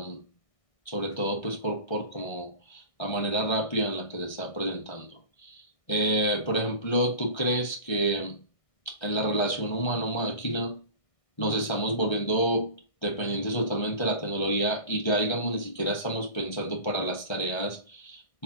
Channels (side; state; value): right; late; 1.6 ms